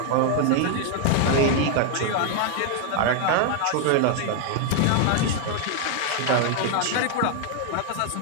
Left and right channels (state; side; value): different; both; correlation 0.00